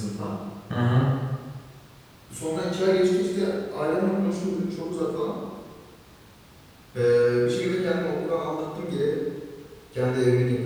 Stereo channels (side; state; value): both; identical; correlation 1.00